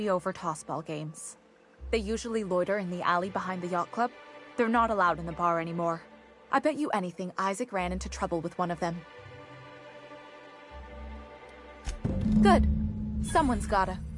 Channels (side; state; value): both; identical; correlation 1.00